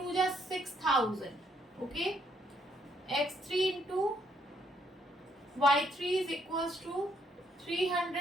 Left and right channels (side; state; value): both; normal; correlation 0.71